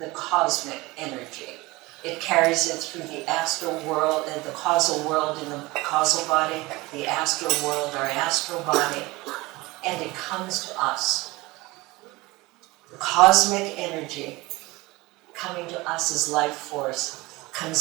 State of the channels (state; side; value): quieter; left; 21.7 dB